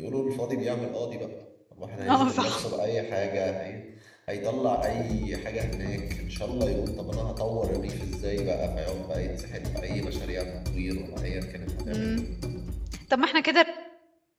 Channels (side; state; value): both; identical; correlation 1.00